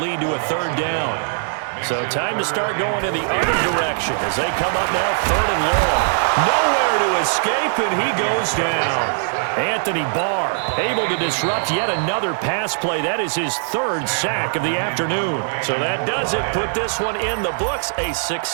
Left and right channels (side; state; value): left; silent; digital silence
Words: lead to a third down. So time to start going in the other direction as they come up now, third and long. Nowhere to escape, and he goes down. Anthony Barr able to disrupt yet another pass play. That is his third sack of the afternoon. So that does it. Put this one in the books. A